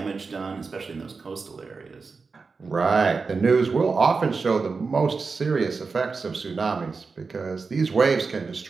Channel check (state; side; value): quieter; left; 4.6 dB